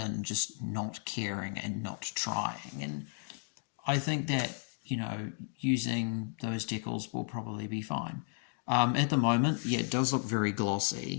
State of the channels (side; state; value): right; silent; 55 dB below the other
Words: just not caring and not trying. And I think that, using those decals will probably be fine. At the moment, yeah, it does look very